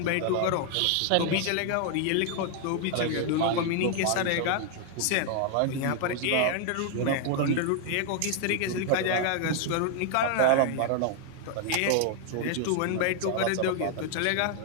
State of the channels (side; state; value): both; different; correlation 0.00